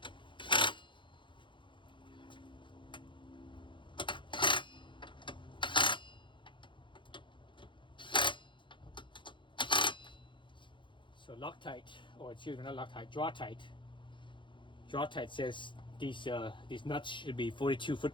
So Loctite, or excuse me, not Loctite, TIte. TIte says these nuts should be 42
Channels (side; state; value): right; late; 0.23 ms